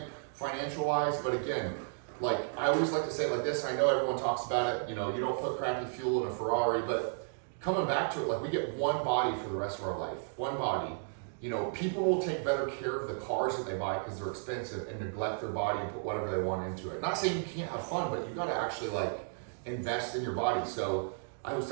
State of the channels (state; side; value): silent; left; digital silence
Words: financial wise, but again, like I always like to say it like this, and I know everyone talks about it, you know, you don't put crappy fuel in a Ferrari, but coming back to it, like we get one body for the rest of our life, one body. You know, people will take better care of the cars that they buy because they're expensive and neglect their body and put whatever they want into it. Not saying you can't have fun, but you gotta actually like invest in your body. So I was